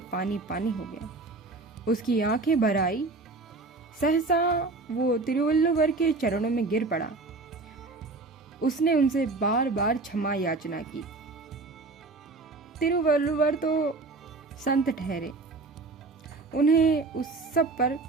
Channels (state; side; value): quieter; left; 3.5 dB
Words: पानी पानी हो गया। उसकी आंखें भर आई। सहसा वो तिरुवल्लुवर के चरणों में गिर पड़ा। उसने उनसे बार बार क्षमा याचना की। तिरुवल्लुवर तो संत ठहरे, उन्हें उस सब पर